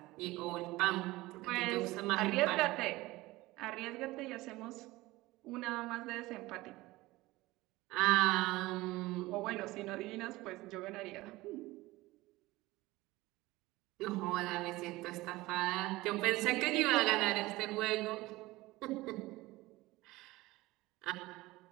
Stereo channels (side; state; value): left; quieter; 19.5 dB